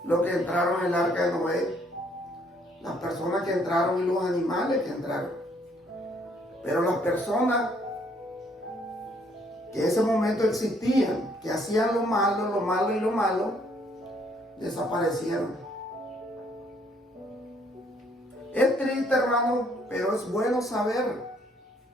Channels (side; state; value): both; normal; correlation 0.66